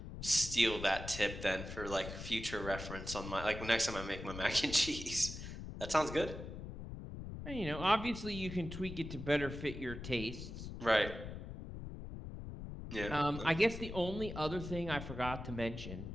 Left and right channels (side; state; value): left; noise; rumble, 9 dB below the sound